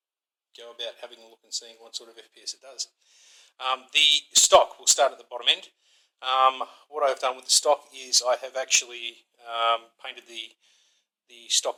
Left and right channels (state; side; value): identical; both; correlation 1.00